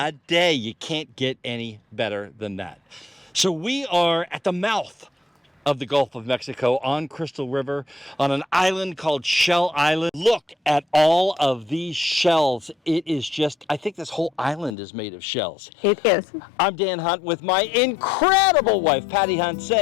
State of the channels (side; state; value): right; drops out; at 14.8 s